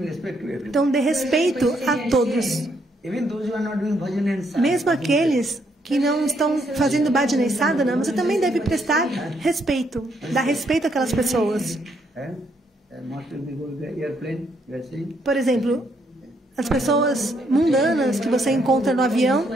Então, dê respeito a todos. Mesmo aqueles que não estão fazendo bhajana e sadhana, você também deve prestar respeito, dar respeito àquelas pessoas. Por exemplo, as pessoas mundanas que você encontra no avião,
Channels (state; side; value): normal; both; correlation 0.73